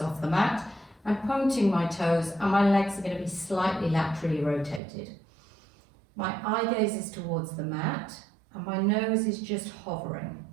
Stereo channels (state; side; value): drops out; left; at 4.8 s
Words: the mat. I'm pointing my toes and my legs are going to be slightly laterally rotated. My eye gaze is towards the mat and my nose is just hovering.